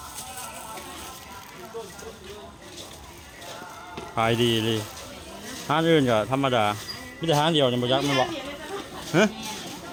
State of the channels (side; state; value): both; identical; correlation 1.00